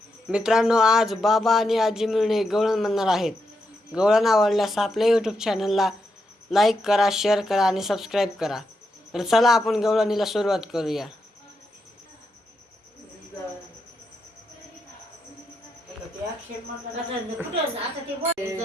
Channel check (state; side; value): normal; both; correlation 0.83